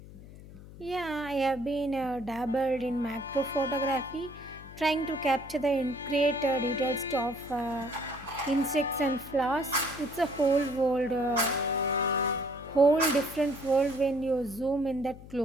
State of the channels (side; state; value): left; noise; hum, 17 dB below the sound